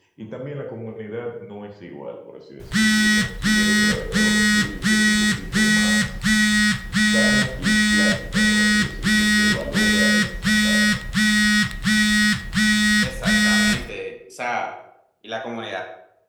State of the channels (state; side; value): identical; both; correlation 1.00